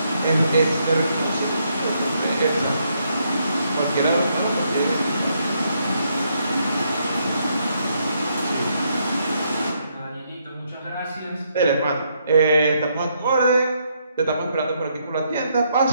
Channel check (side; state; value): both; inverted; correlation -0.75